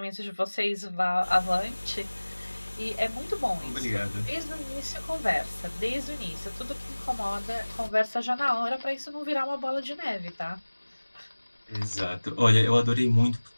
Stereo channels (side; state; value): both; inverted; correlation -1.00